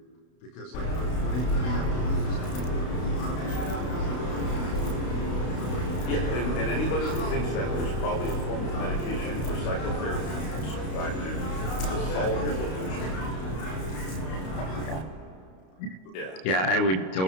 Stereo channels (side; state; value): right; late; 32 ms